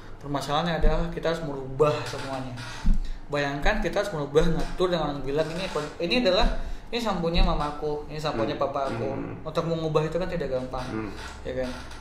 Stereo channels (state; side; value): identical; both; correlation 1.00